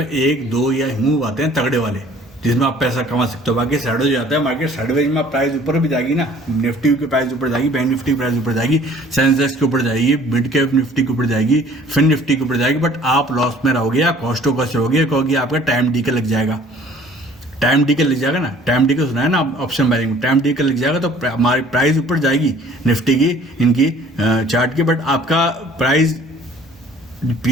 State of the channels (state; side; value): normal; both; correlation 0.53